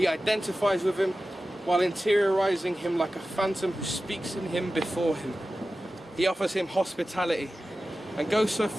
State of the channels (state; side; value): normal; both; correlation 0.94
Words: identifies with him, while interiorizing him like a phantom who speaks in him before him. He offers him hospitality and goes so